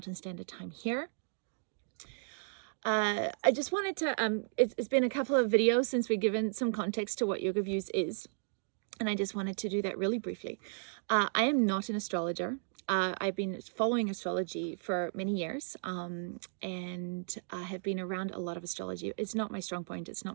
Standard Time here. I just wanted to, it's been a couple of videos since we've given some context to what Yoga Views is, and I just wanted to do that really briefly. I am not an astrologer. I've been following astrology for many years, and I have been around a lot of astrology. It's not my strong point. It's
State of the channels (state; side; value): silent; left; digital silence